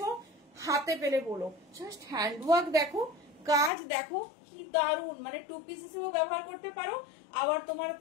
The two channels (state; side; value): drops out; right; at 3.7 s